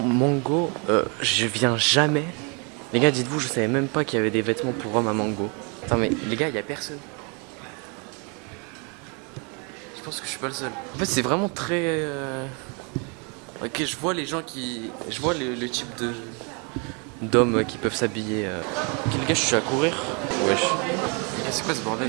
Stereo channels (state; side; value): quieter; left; 34.2 dB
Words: Mango, je viens jamais. Les gars, dites-vous, je savais même pas qu'il y avait des vêtements pour hommes à Mango. Attends, mais les gars, il n'y a personne. Je pense que je suis pas le seul. En fait, c'est vraiment très... Ok, je vois les gens qui... Je vois le type d'hommes qui peuvent s'habiller. Ok, les gars, je suis à courir. Wesh. Les gars, c'est quoi ce bordel